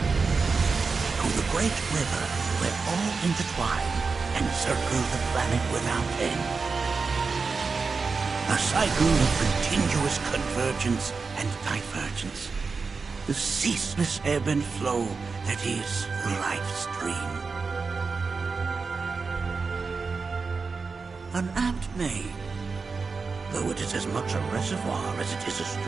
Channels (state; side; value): quieter; left; 4.7 dB